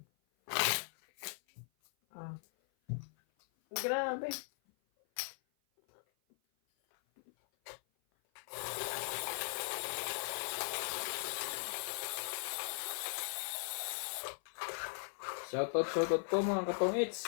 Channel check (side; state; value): right; silent; 52 dB below the other